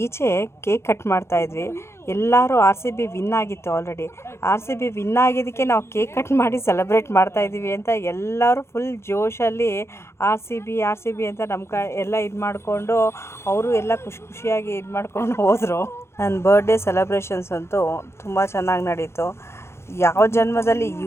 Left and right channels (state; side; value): late; right; 0.13 ms